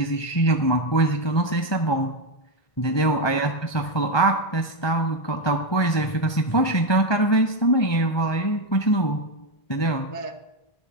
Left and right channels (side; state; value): right; late; 1.2 ms